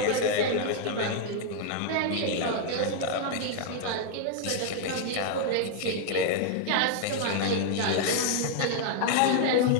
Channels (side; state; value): both; different; correlation 0.00